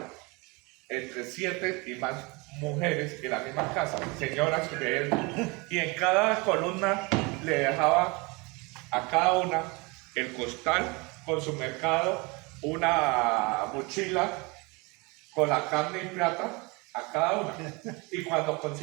entre 7 y más mujeres en la misma casa, señoras de él, y en cada columna le dejaba a cada una el costal con su mercado, una mochila con la carne y plata a cada una. Y cuando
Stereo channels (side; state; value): left; quieter; 27.2 dB